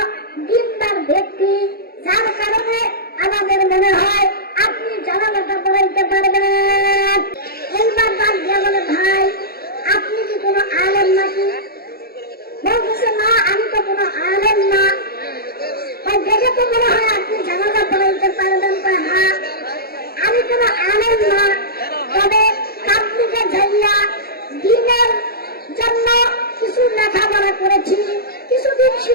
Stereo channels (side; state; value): right; late; 0.45 ms